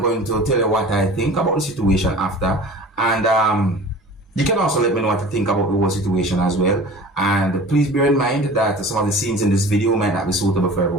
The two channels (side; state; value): both; normal; correlation 0.40